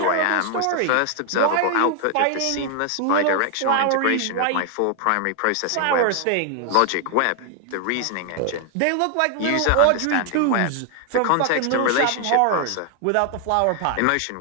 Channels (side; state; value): both; different; correlation 0.00